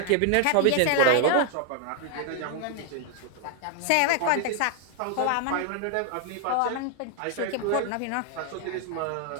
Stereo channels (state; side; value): different; both; correlation 0.00